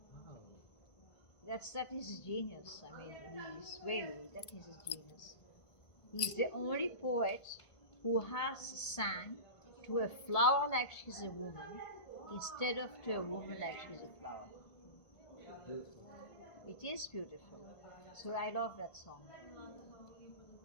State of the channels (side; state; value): right; late; 1.5 ms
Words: Wow. That is his genius. I mean, that is his genius. He's the only poet who has sang to a flower like she's a woman instead of to a woman like she's a flower. It is beautiful. So I love that song.